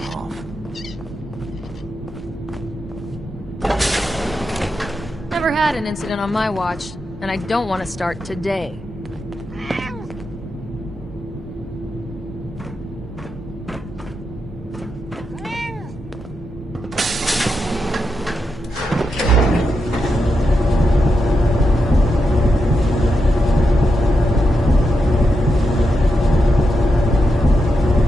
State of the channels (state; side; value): normal; both; correlation 0.85